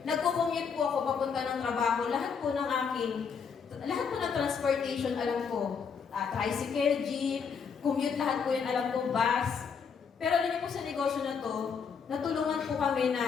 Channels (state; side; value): quieter; right; 6.2 dB